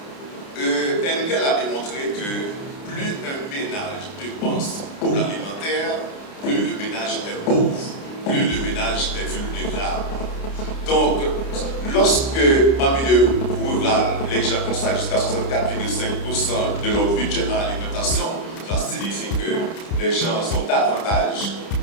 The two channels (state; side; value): late; right; 30 ms